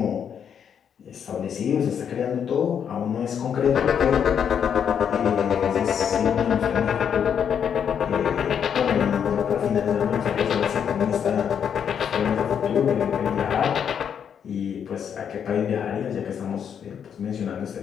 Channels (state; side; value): quieter; right; 8.0 dB